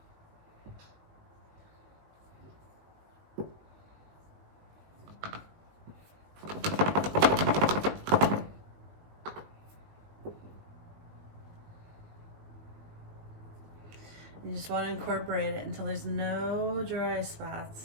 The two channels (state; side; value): late; left; 19 ms